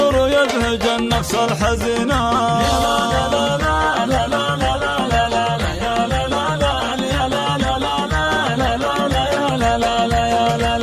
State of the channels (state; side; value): identical; both; correlation 1.00